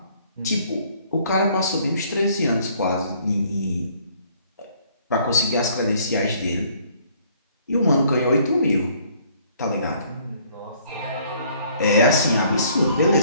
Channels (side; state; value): both; inverted; correlation -0.61